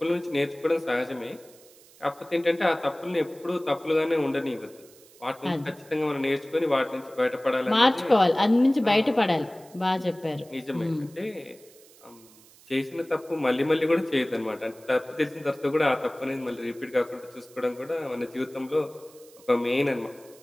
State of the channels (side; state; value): right; noise; hiss, 25 dB below the sound